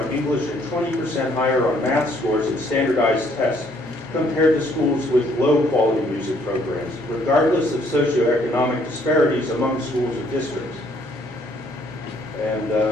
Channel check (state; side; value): normal; both; correlation 0.65